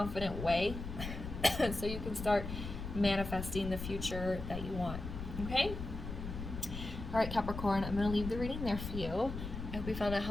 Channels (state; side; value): noise; left; rumble, 7 dB below the sound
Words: way so you can start manifesting the future that you want. Okay? All right, Capricorn, I'm going to leave the reading there for you. I hope you found it